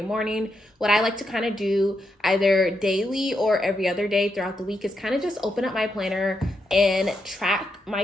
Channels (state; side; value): normal; both; correlation 0.82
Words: morning. What I like to kind of do either daily or every other day throughout the week is kind of just open up my planner and track my